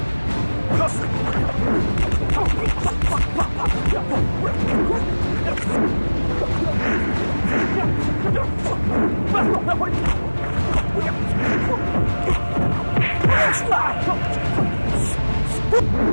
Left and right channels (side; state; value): both; inverted; correlation -1.00